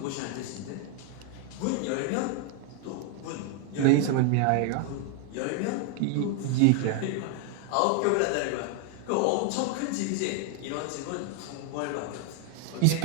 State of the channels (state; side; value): different; both; correlation 0.00